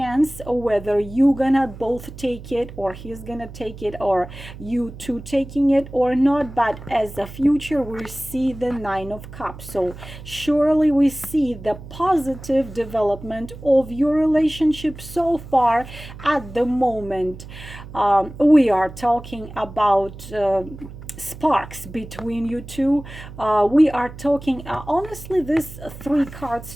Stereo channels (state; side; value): noise; right; hum, 14 dB below the sound